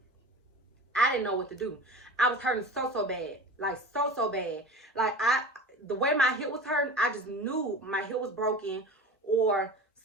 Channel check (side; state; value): both; normal; correlation 0.34